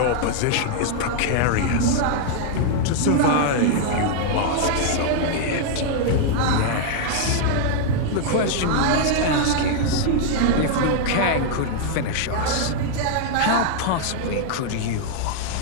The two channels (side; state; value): both; different; correlation 0.00